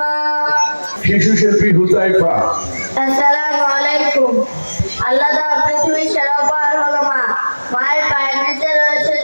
শিশু শিল্পী হুযায়ফা। আসসালামু আলাইকুম। আল্লাহ তাআলা পৃথিবীর সেরা উপহার হলো মা। মায়ের পায়ের নিচে রয়েছে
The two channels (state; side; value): inverted; both; correlation -1.00